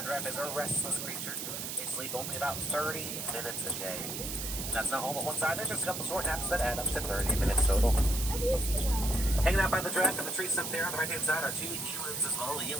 giraffe is a restless creature. They sleep only about 30 minutes a day. And that's not all at one side. There's just a couple short naps that add up to 30 minutes total. Hanging out by the giraffe and the tree stump there on the right hand side are two elands as well. The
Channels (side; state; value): right; noise; hiss, 5 dB below the sound